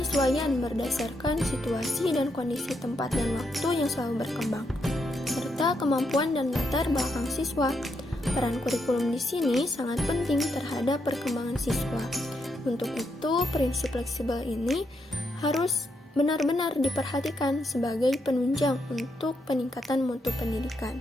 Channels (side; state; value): both; normal; correlation 0.80